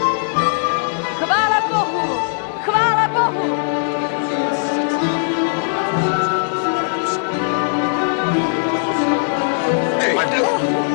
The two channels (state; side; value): silent; right; digital silence